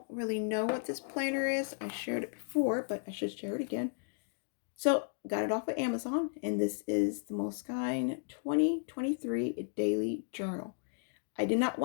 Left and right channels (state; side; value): silent; right; digital silence